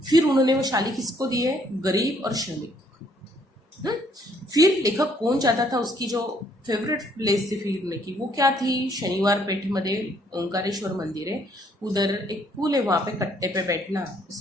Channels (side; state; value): both; normal; correlation 0.66